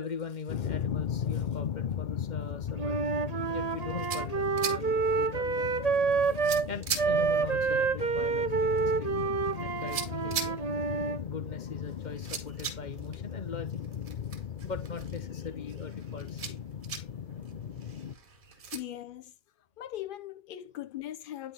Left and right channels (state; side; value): late; right; 1.7 ms